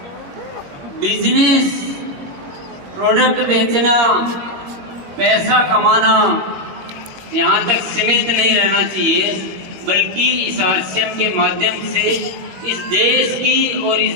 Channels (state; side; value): late; left; 21 ms